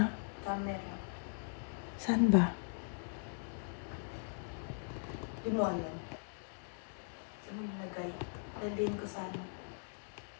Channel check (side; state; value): right; silent; digital silence